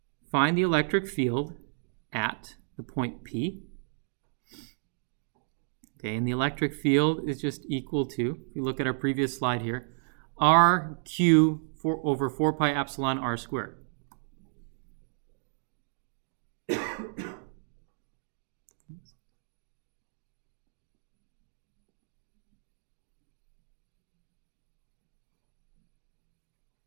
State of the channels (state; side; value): silent; left; digital silence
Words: the electric field at the point P. Okay, and the electric field is just equal to, if you look at our previous slide here, RQ over 4 pi epsilon R squared.